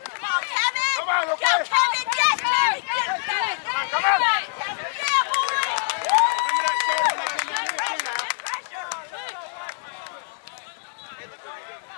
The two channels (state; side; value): silent; right; digital silence